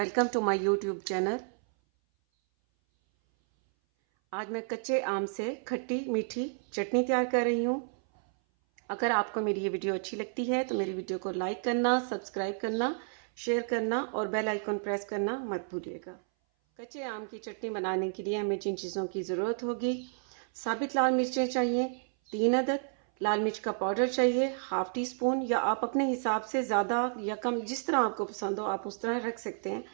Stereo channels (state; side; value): silent; left; 57 dB below the other